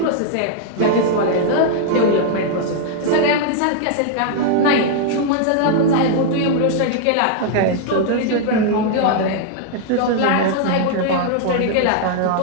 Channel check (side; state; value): both; different; correlation -0.01